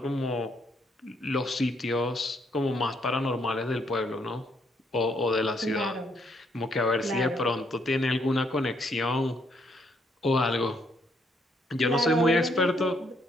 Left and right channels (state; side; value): normal; both; correlation 0.72